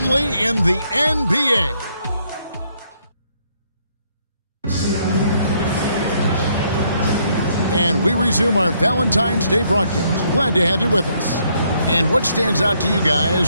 in the NBA. And we resume our Valentine's Day broadcast. Glad to have you with us. And what stands out to you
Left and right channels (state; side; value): inverted; both; correlation -0.71